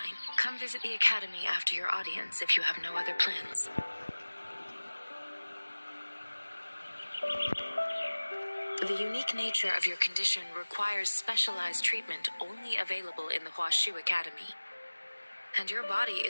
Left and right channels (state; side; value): inverted; both; correlation -1.00